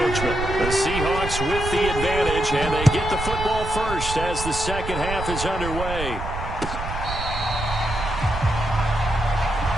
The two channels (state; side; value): noise; right; rumble, 6 dB below the sound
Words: The Seahawks with the advantage, and they get the football first as the second half is underway.